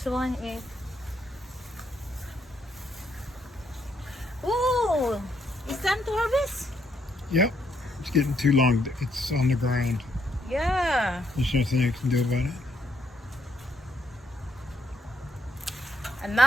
one is. Oh, it's time to harvest. Yep. It's getting too long. It's on the ground. Yeah. There's nothing you can do about it.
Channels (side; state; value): both; normal; correlation 0.74